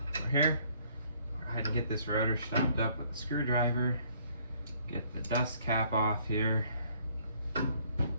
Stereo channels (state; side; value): inverted; both; correlation -0.63